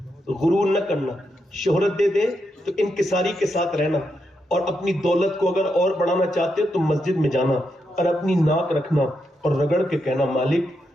غرور نہ کرنا. شہرت دے دے تو انکساری کے ساتھ رہنا, اور اپنی دولت کو اگر اور بڑھانا چاہتے ہو تو مسجد میں جانا اور اپنی ناک رکھنا اور رگڑ کے کہنا مالک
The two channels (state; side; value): normal; both; correlation 0.83